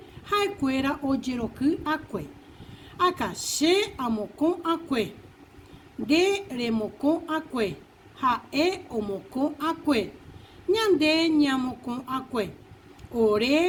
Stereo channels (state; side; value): identical; both; correlation 1.00